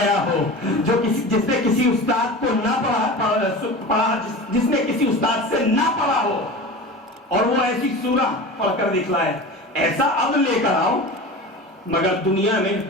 ہو، جو جس نے کسی استاد کو نہ پڑھا، جس نے کسی استاد سے نہ پڑھا ہو، اور وہ ایسی سورہ پڑھ کر دکھلائے۔ ایسا عبد لے کر آؤ، مگر دنیا میں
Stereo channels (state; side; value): normal; both; correlation 0.32